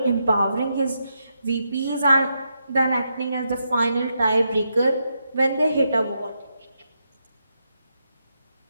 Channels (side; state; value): both; inverted; correlation -0.83